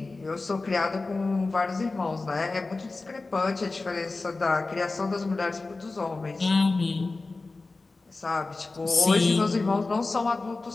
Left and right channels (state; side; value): quieter; right; 3.5 dB